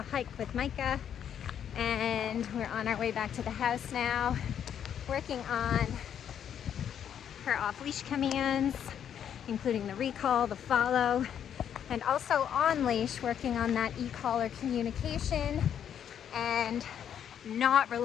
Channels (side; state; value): right; quieter; 9.0 dB